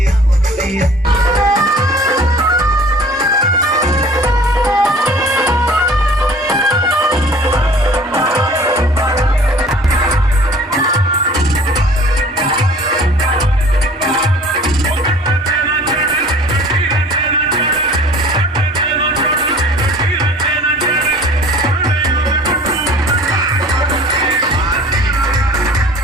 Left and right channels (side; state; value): both; normal; correlation 0.48